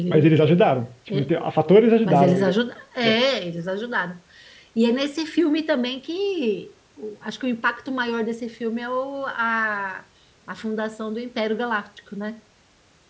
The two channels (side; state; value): both; identical; correlation 1.00